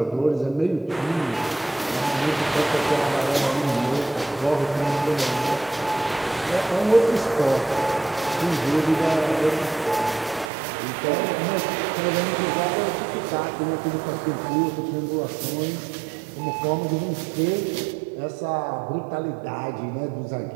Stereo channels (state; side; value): drops out; left; at 10.5 s